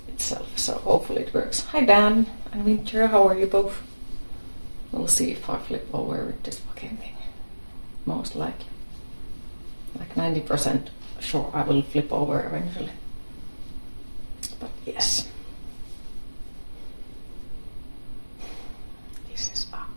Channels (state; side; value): inverted; both; correlation -1.00